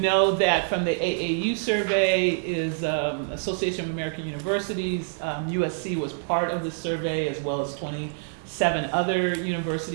that from the AAU survey is Association of American Universities. USC was part of the survey, as well as 27 other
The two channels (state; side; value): silent; left; digital silence